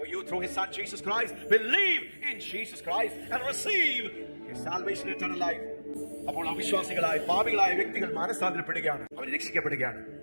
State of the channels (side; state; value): both; inverted; correlation -1.00